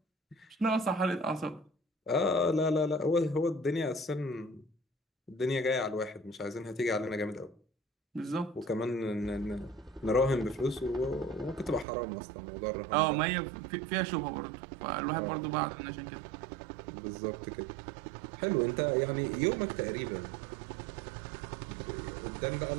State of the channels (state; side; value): drops out; left; at 11.9 s